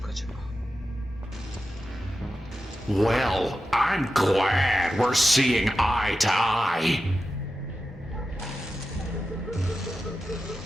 acaba? Well, I'm glad we're seeing eye to eye.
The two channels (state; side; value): normal; both; correlation 0.91